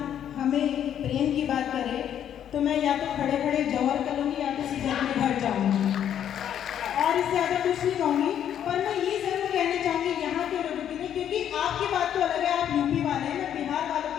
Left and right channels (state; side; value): quieter; right; 9.8 dB